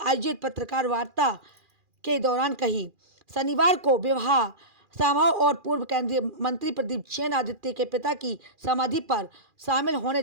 आयोजित पत्रकार वार्ता के दौरान कही। शनिवार को विवाह समारोह और पूर्व केंद्रीय मंत्री प्रदीप जैन आदित्य के पिता की समाधि पर शामिल होने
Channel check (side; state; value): left; late; 2.4 ms